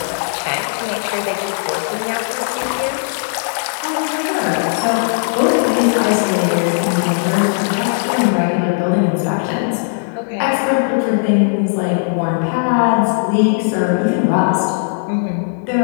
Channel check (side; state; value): right; silent; digital silence